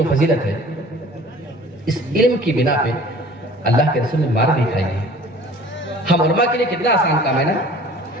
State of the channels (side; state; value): both; normal; correlation 0.47